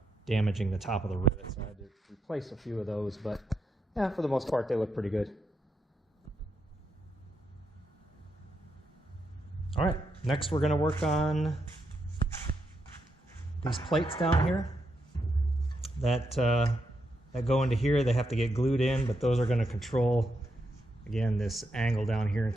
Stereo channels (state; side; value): normal; both; correlation 0.82